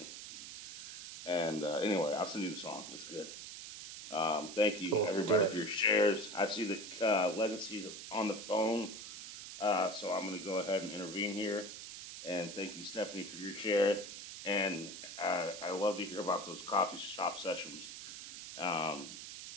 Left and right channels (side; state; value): right; noise; hiss, 10 dB below the sound